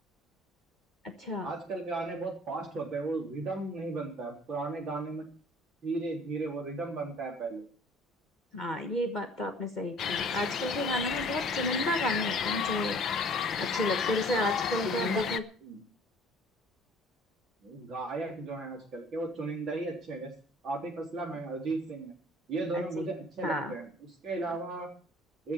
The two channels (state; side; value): normal; both; correlation 0.52